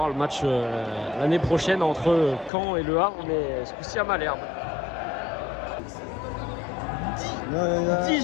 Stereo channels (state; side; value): drops out; right; at 2.5 s